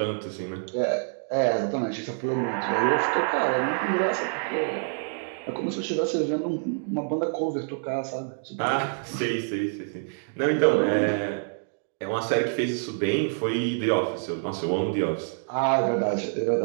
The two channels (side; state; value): left; silent; digital silence